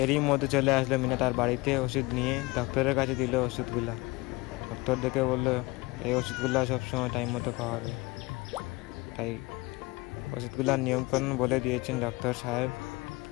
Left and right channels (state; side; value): quieter; right; 23.3 dB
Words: এরই মধ্যে চলে আসলো মিনা তার বাড়িতে ওষুধ নিয়ে। ডক্টরের কাছে দিল ওষুধগুলা। ডক্টর দেখে বললো এই ওষুধগুলো সবসময় টাইম মতো খাওয়াবে। তাই ওষুধগুলার নিয়মকানুন বলে দিয়েছেন ডক্টর সাহেব।